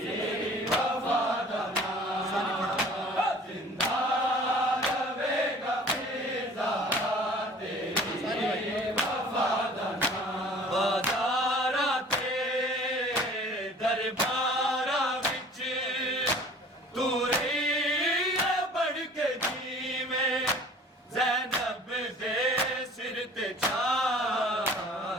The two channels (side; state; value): both; normal; correlation 0.48